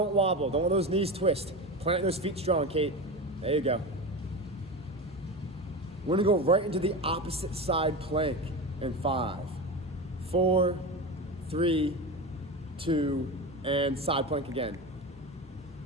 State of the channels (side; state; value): both; normal; correlation 0.23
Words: wobble. Don't let those knees twist. Plant those feet strong, Kate. There you go. We're gonna go right into the opposite side plank in 5, 4, 3, 2, and side plank again.